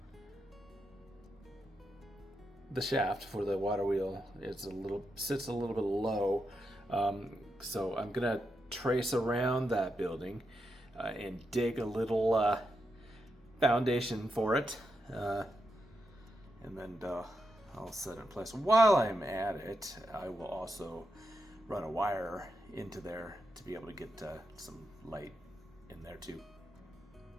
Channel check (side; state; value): both; normal; correlation 0.85